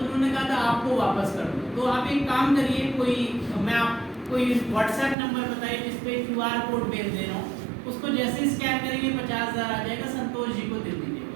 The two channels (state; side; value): drops out; left; at 5.2 s